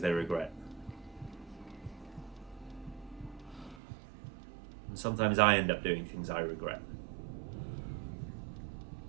they regret. And sometimes I end up doing things I regret.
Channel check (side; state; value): left; drops out; at 3.8 s